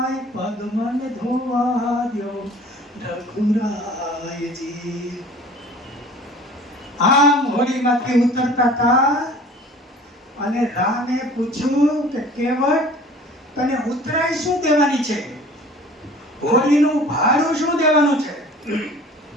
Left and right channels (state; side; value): normal; both; correlation 0.46